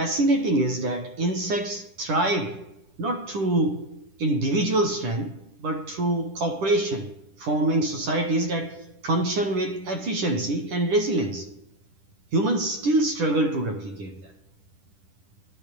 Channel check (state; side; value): late; left; 10 ms